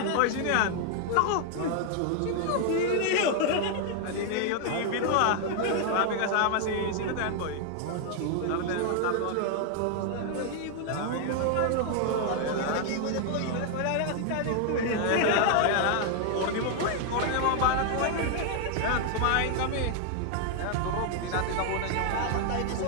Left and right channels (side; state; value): both; different; correlation 0.00